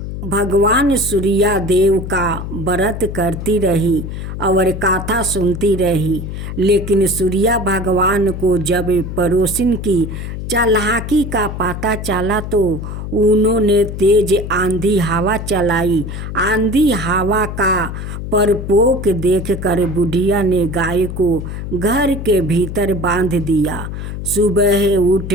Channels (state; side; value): noise; left; hum, 7 dB below the sound